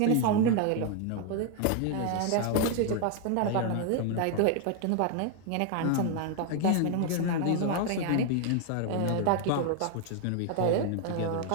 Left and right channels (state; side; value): different; both; correlation 0.00